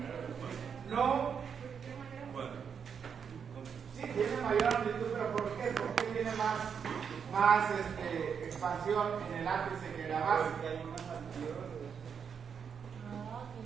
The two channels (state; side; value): quieter; left; 6.9 dB